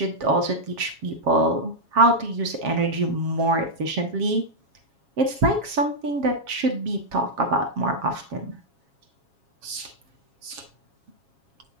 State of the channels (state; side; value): late; left; 7.3 ms